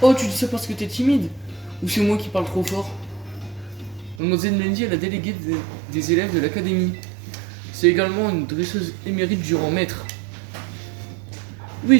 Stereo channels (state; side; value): drops out; left; at 4.2 s